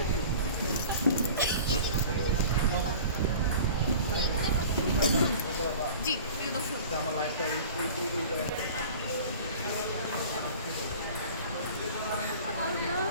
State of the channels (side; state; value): both; inverted; correlation -0.41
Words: জি, প্রিয় দর্শক,